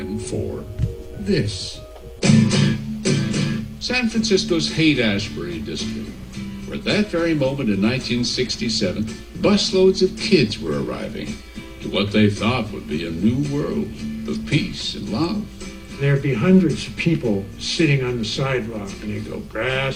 for this. San Francisco's Haight-Ashbury district, where at that very moment in 1967, busloads of kids were arriving to what they thought would be a new world of peace and love. There'd be hundreds of people sitting on the sidewalk, and they'd go, grass,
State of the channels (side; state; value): both; identical; correlation 1.00